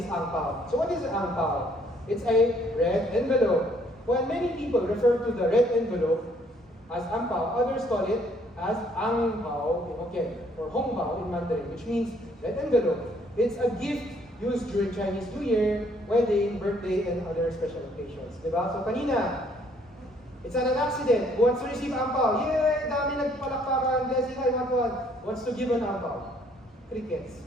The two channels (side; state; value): both; normal; correlation 0.64